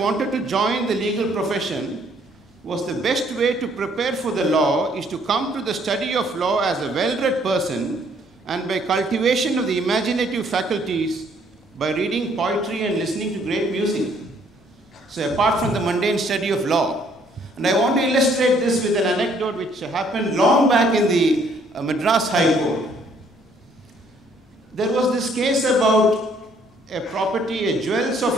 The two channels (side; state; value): both; normal; correlation 0.64